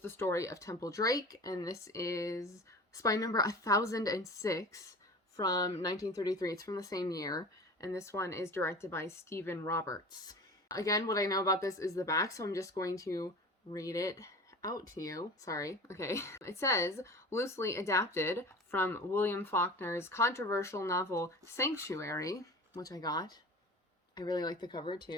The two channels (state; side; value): normal; both; correlation 0.36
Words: Story of Temple Drake, and this is spy number 1006 from 1933. It's from the same year, and this one is directed by Stephen Roberts. Again, what I know about this is the back, so I'm just going to read it out to you. Sorry. Okay. It says, loosely adapted from William Faulkner's controversial novel Sanctuary, which I got. I really like the cover